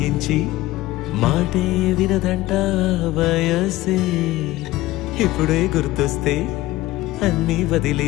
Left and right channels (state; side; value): quieter; right; 17.4 dB